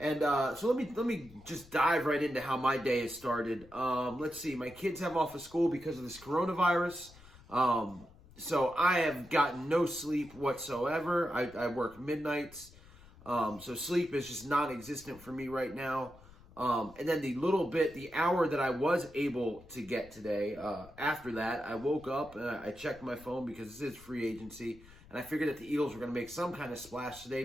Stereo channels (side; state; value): left; noise; rumble, 22 dB below the sound